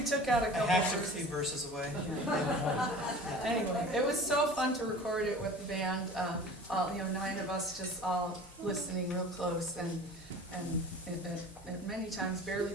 took out a I couple hacked a verses. few verses away. Anyway, it was so fun to record it with the band. 9 of us just all listening real close and many times barely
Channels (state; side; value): normal; both; correlation 0.41